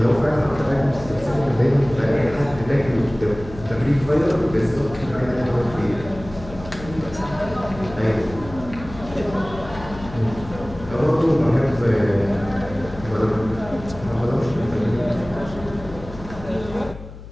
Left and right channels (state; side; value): noise; left; hum, 14 dB below the sound